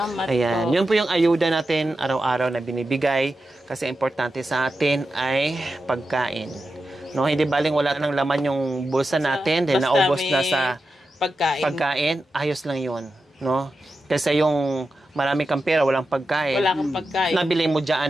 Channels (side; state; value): both; normal; correlation 0.90